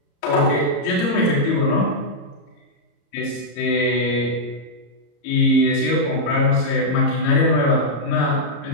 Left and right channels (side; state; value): right; late; 34 ms